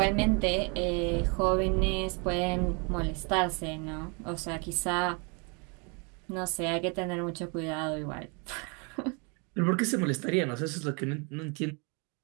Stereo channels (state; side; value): quieter; left; 33.6 dB